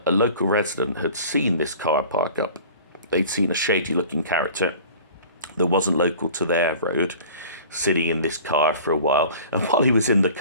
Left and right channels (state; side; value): inverted; both; correlation -0.44